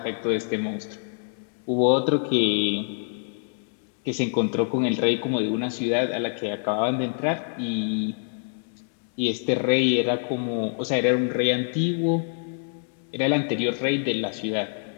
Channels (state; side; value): silent; right; digital silence